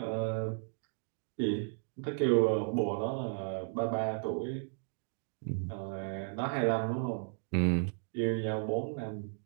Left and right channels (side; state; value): left; silent; digital silence